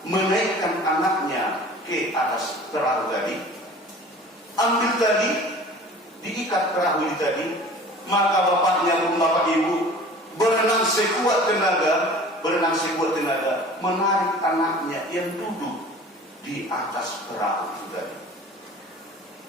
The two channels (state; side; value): normal; both; correlation 0.43